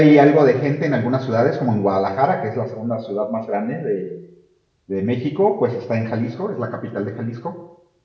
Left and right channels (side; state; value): both; identical; correlation 1.00